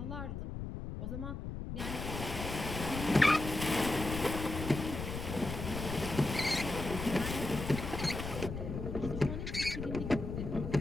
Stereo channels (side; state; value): left; noise; rumble, 6 dB below the sound